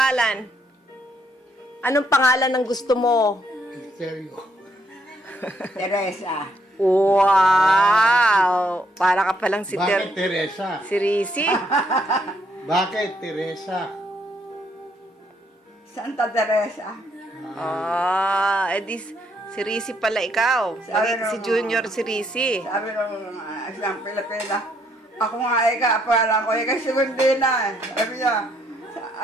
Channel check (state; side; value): normal; both; correlation 0.71